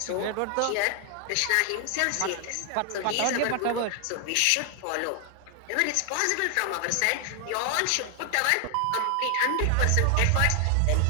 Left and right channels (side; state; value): both; different; correlation 0.00